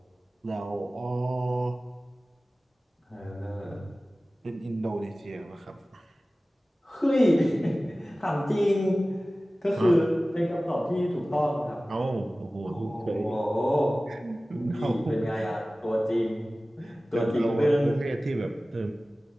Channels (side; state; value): both; normal; correlation 0.97